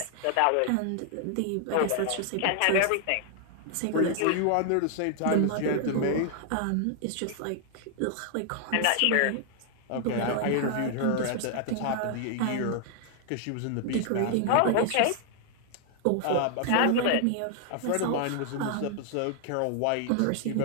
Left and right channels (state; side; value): different; both; correlation 0.00